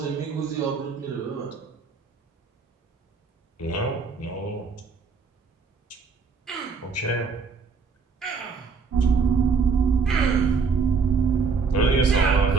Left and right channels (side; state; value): left; quieter; 5.1 dB